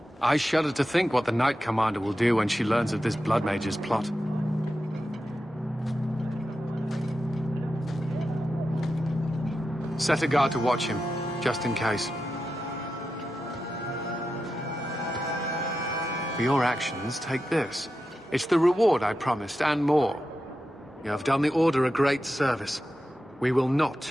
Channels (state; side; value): normal; both; correlation 0.90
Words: I shudder to think what the Knight Commander will do when she learns of this Blood Mage's plot. Set a guard to watch him, just in case. For your actions, take this. It's the reward I promised, and more. You have done the Order a great service. We will